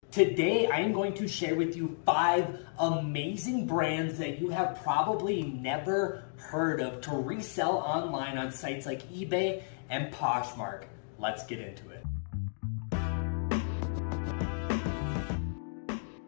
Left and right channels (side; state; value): right; silent; digital silence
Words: Today, I am going to share with you 5 amazing brands that you have probably never heard of to resell online on sites like eBay and Poshmark. Let's get into it.